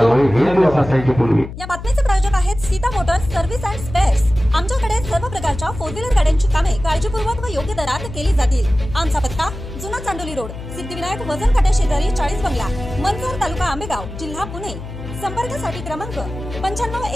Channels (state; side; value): noise; left; hum, 11 dB below the sound